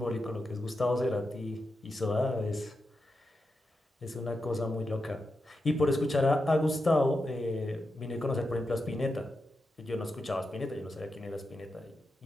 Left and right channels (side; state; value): both; normal; correlation 0.88